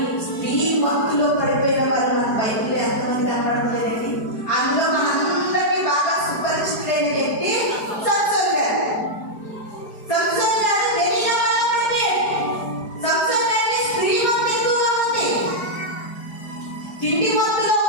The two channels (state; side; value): late; right; 4.8 ms